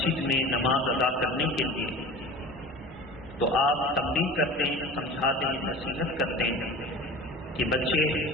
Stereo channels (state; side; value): normal; both; correlation 0.37